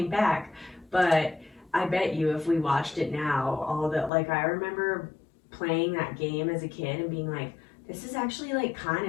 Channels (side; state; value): right; drops out; at 4.1 s